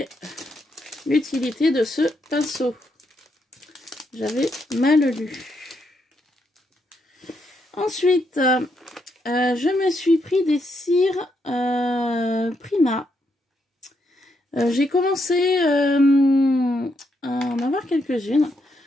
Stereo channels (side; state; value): both; normal; correlation 0.78